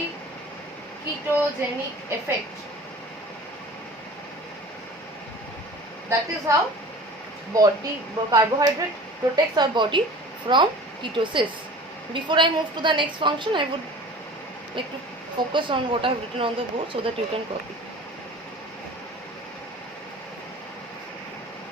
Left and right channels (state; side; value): normal; both; correlation 0.41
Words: effect. That is how carbohydrate protects our body from ketosis. Before I move to the next function, I would like to focus on what I have written on the board so that you can copy.